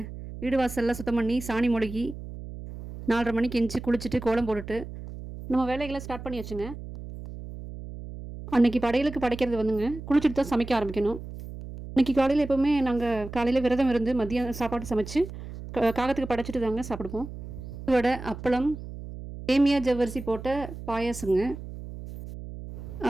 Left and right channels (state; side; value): noise; right; hum, 11 dB below the sound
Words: வீடு வாசல்லாம் சுத்தம் பண்ணி சாணி மொழுகி 4:30 மணிக்கு எந்திச்சு குளிச்சுட்டு கோலம் போட்டுட்டு நம்ம வேலைகளை ஸ்டார்ட் பண்ணி வச்சுங்க. அன்றைக்கி படையலுக்கு படைக்கிறது வந்துங்க குளிச்சுட்டு தான் சமைக்க ஆரம்பிக்கணும். இன்றைக்கி காலையில் எப்போவுமே நாங்கள் காலையில் விரதம் இருந்து மதியம் சாப்பாடு சமைச்சு காகத்துக்கு படைச்சிட்டு தாங்க சாப்பிடுவோம். வடை, அப்பளம், சேமியா ஜவ்வரிசி போட்ட பாயாசங்க,